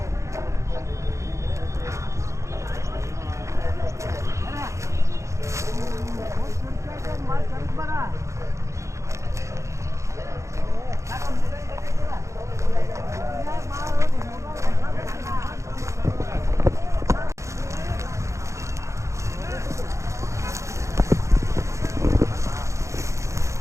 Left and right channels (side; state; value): left; late; 0.14 ms